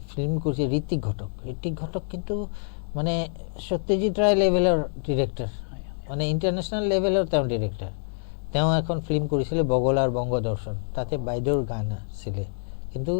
ফিল্ম কৰিছে ঋত্বিক ঘটক কিন্তু মানে সত্যজিৎ ৰায় লেভেলৰ ডিৰেক্টৰ মানে ইণ্টাৰনেশ্যনেল লেভেলৰ তেওঁ ডিৰেক্টৰ তেওঁ এখন ফিল্ম কৰিছিলে বগলাৰ বংগদৰ্শন তাতে বাইদেউৰ গান আছিলে কিন্তু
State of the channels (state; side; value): silent; right; digital silence